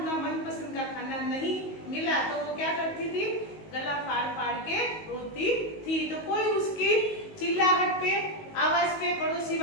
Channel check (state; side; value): late; right; 19 ms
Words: मनपसंद का खाना नहीं मिला। तो वो क्या करती थी? गला फाड़ फाड़ के रोती थी। तो कोई उसकी चिल्लाहट पे, आवाज पे पड़ोसी